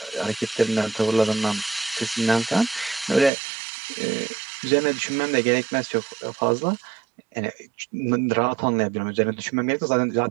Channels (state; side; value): drops out; left; at 3.3 s